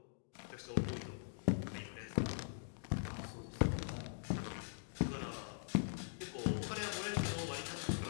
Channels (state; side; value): silent; right; digital silence